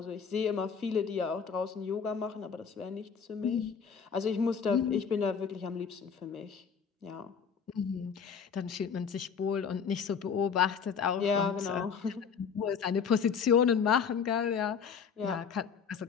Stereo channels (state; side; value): quieter; right; 6.5 dB